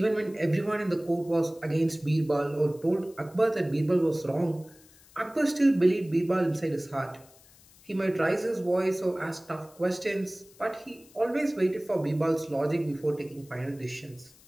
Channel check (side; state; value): left; noise; hiss, 26 dB below the sound